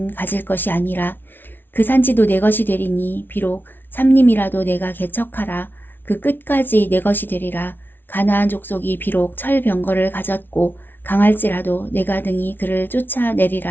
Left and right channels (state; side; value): late; right; 0.098 ms